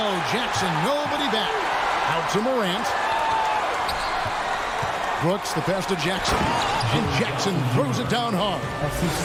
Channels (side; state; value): both; identical; correlation 1.00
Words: Jackson, nobody back. Out to Morant. Brooks, the pass to Jackson. And Jackson throws it down hard.